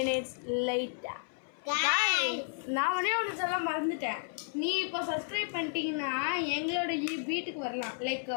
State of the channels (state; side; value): silent; right; 56 dB below the other